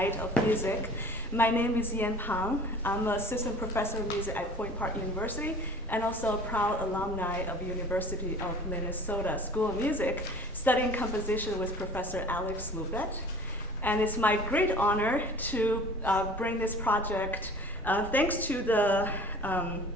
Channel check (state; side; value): normal; both; correlation 0.45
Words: of music. My name is Yan Pang. I'm an assistant professor of music at Point Park University and also a proud alumni of University of Minnesota School of Music, studying composition with Professor Alex Lubet. And it's my great honor to bring this project thanks to the